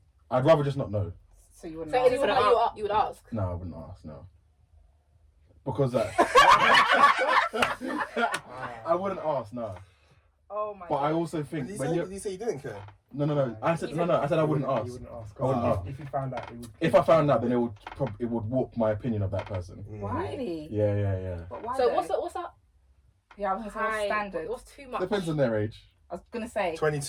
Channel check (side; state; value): both; identical; correlation 1.00